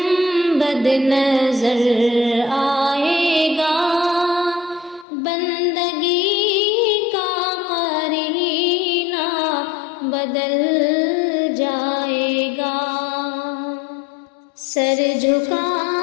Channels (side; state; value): right; drops out; at 5.1 s